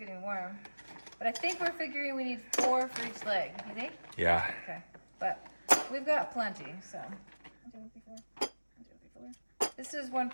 warm. But I think we're figuring we need 4 for each leg. You think? Yeah. Okay. But we've got plenty, so. This is one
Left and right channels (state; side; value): inverted; both; correlation -1.00